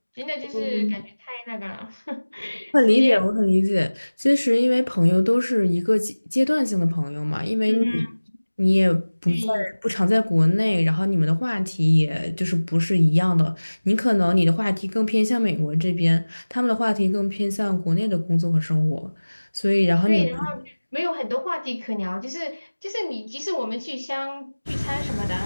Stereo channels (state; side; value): inverted; both; correlation -1.00